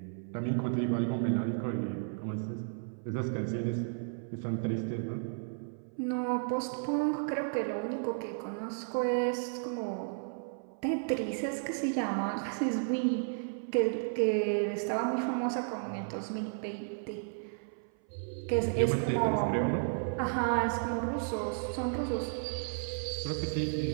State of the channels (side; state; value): left; silent; 56 dB below the other